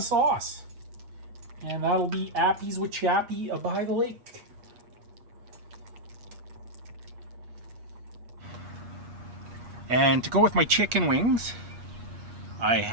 And that'll be Appies with Chappie by the lake. And to go with my chicken wings, I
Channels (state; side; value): late; left; 8.4 ms